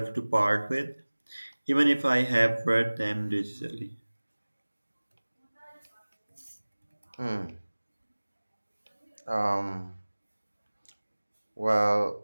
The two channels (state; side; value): inverted; both; correlation -1.00